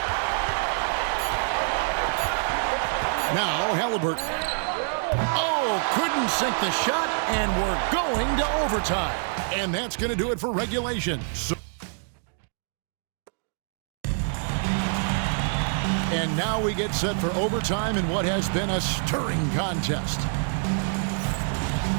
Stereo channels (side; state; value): left; silent; 60 dB below the other